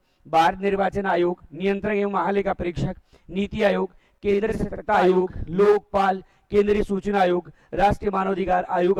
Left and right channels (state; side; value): identical; both; correlation 1.00